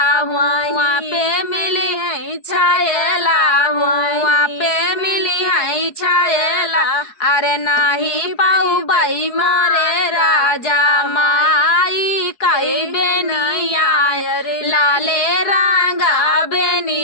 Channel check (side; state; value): right; late; 4.7 ms